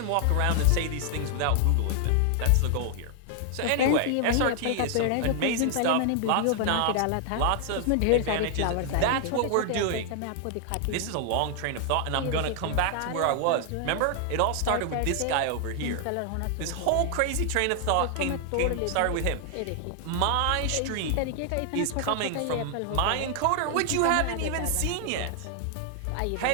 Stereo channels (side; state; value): both; different; correlation 0.00